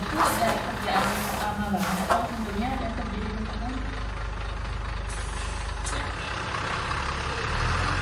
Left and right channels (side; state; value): both; identical; correlation 1.00